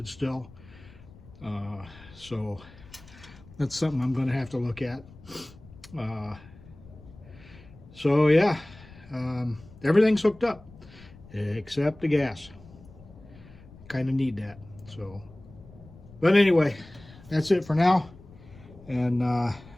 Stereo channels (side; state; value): left; noise; rumble, 21 dB below the sound